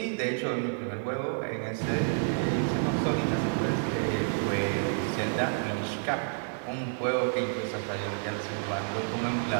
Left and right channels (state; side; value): silent; left; digital silence